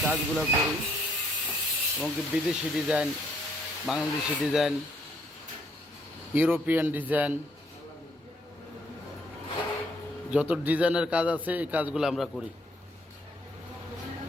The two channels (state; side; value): normal; both; correlation 0.69